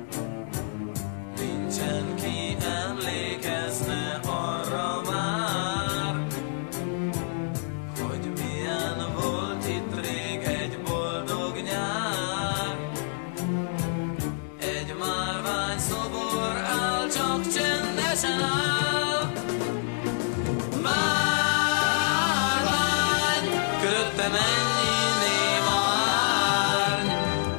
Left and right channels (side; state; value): right; silent; digital silence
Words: Nincsen ki emlékezne arra már, hogy milyen volt itt rég egy boldog nyár. Egy márvány szobor áll, csak csendesen áll. Márvány, körötte mennyi néma árny.